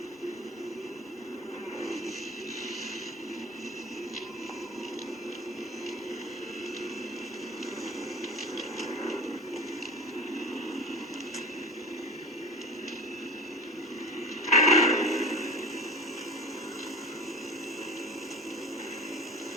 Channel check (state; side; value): normal; both; correlation 0.37